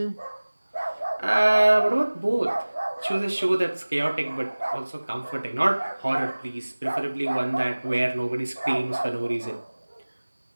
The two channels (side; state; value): both; inverted; correlation -1.00